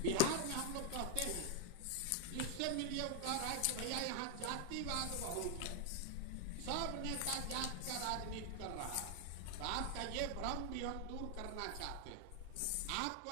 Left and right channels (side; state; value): both; different; correlation 0.00